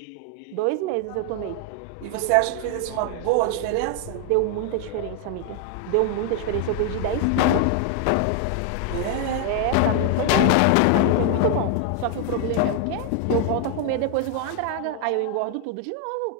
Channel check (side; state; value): both; different; correlation 0.00